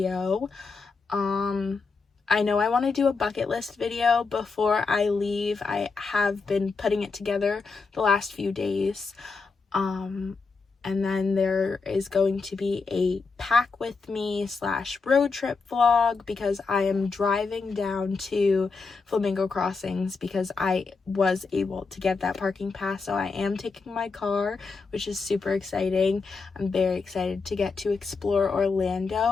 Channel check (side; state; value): right; quieter; 4.5 dB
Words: I know I want to do a bucket list video before I leave. I have been putting it together the last few days. And then there is going to be a pack with me / road trip vlog, because I am driving down to Flamingo Crossings because I was able to get that parking pass. So I am taking my car, which is super exciting. I'm very excited to get to explore Orlando